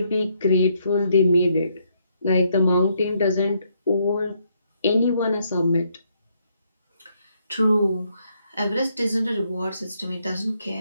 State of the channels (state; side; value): inverted; both; correlation -0.73